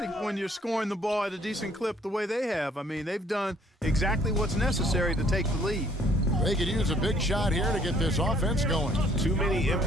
when you're scoring the ball at a decent clip the way they have. I mean, they've done exactly what's necessary to take the lead. They could use a big shot here to get this offense going. Too many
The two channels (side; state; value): both; normal; correlation 0.62